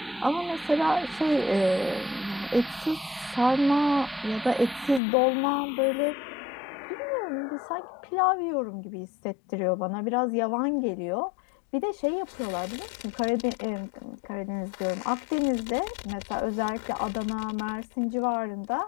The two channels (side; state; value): right; drops out; at 5.0 s